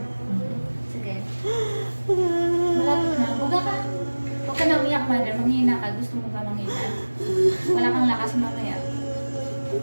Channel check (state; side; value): inverted; both; correlation -1.00